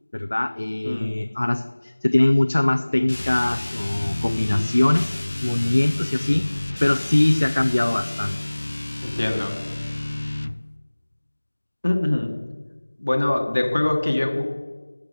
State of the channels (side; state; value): both; inverted; correlation -1.00